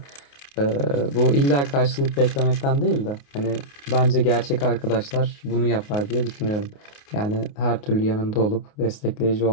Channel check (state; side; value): late; right; 28 ms